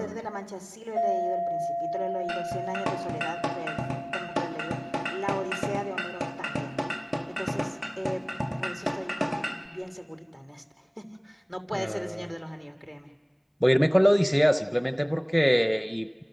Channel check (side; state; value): both; identical; correlation 1.00